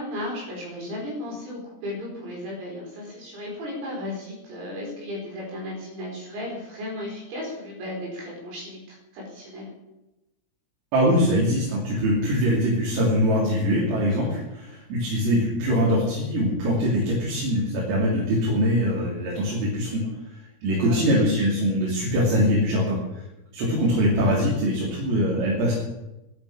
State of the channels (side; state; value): left; late; 17 ms